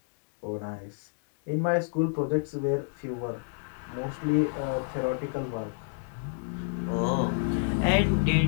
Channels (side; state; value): right; silent; digital silence